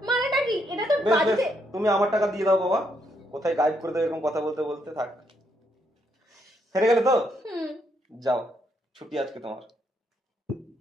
মানেটা কি? এটা তো বেশ বেশ, বাড়িতে। তুমি আমার টাকা দিয়ে দাও বাবা। কোথায় গাইড করে দেবে এরকম কথা বলতে বলতে। থাক, হেরে গেলে তো যাও, ছুটি আজকে তোমার।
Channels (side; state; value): both; normal; correlation 0.75